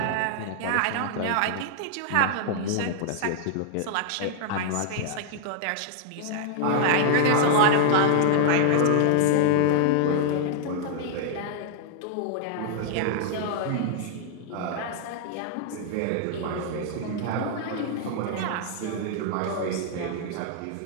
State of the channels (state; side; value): different; both; correlation 0.00